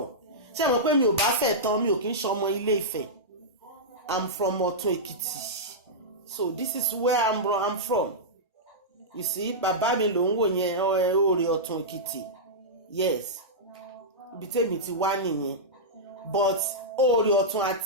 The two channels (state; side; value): normal; both; correlation -0.12